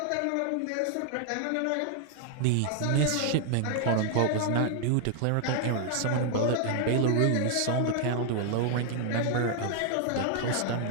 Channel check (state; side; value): different; both; correlation 0.00